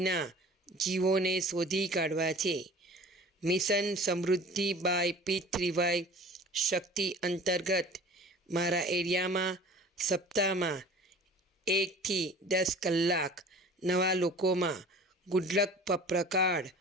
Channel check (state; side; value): normal; both; correlation 0.44